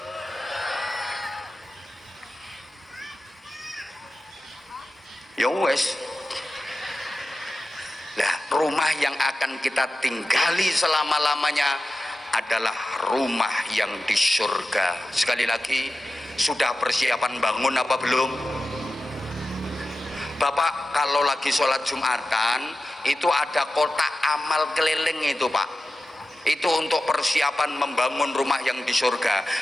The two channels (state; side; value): normal; both; correlation 0.93